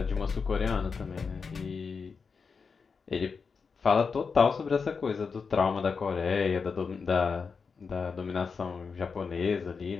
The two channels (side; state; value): right; quieter; 5.3 dB